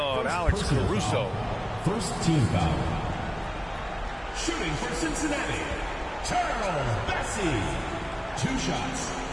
Alex Caruso. First team foul. Shooting for Cincinnati, Charles Bassi. 2 shots.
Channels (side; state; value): both; identical; correlation 1.00